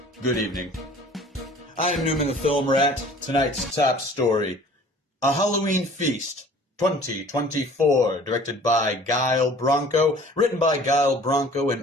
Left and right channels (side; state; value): both; normal; correlation 0.49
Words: Good evening. I'm Newman the Film Rat. Tonight's top story, A Halloween Feast, 2024, directed by Guile Branco, written by Guile Branco